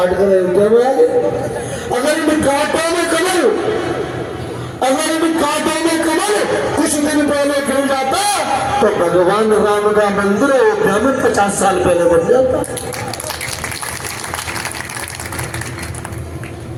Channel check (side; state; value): both; identical; correlation 1.00